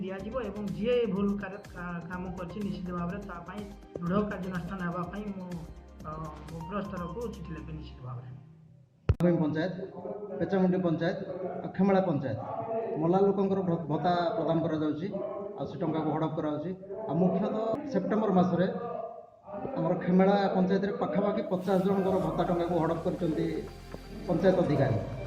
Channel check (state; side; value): identical; both; correlation 1.00